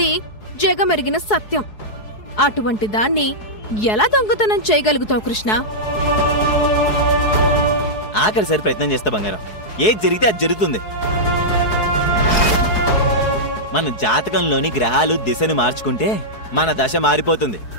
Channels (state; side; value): late; right; 4.7 ms